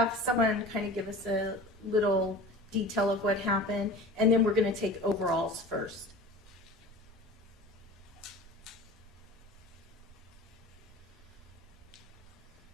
someone kind of give us a little detail of what happened, and then we're going to take overalls first.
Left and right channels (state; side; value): normal; both; correlation 0.37